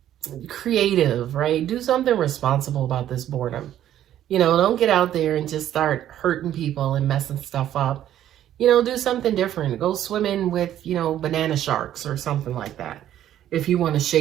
creative, right? Do something responsible about this boredom. You know, don't get out there and just start hurting people and messing stuff up. You know, do something different. Go swimming with, you know, banana sharks or something like that, if you want to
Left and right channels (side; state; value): left; quieter; 11.6 dB